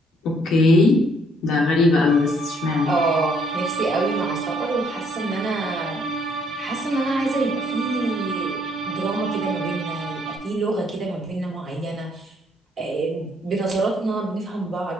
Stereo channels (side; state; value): both; normal; correlation 0.67